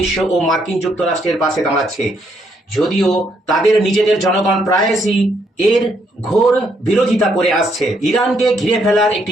ও মার্কিন যুক্তরাষ্ট্রের পাশে দাঁড়াচ্ছে, যদিও তাদের নিজেদের জনগণ প্রায়শই এর ঘোর বিরোধিতা করে আসছে। ইরানকে ঘিরে ফেলার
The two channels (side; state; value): both; normal; correlation 0.73